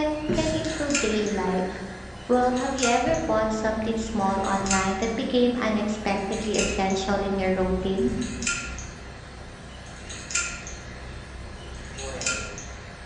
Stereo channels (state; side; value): identical; both; correlation 1.00